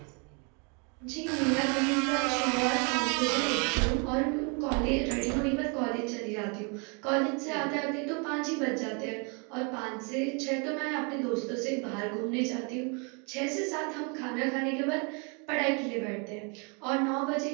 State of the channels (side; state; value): left; quieter; 34.7 dB